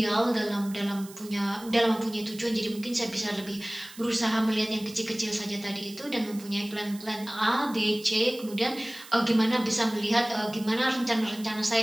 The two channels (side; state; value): right; noise; hiss, 18 dB below the sound